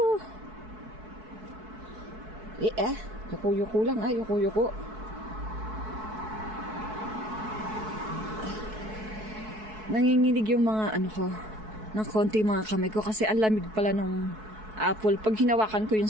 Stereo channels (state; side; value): late; left; 4.6 ms